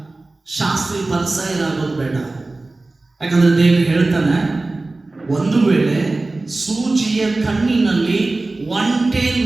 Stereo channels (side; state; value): left; quieter; 3.2 dB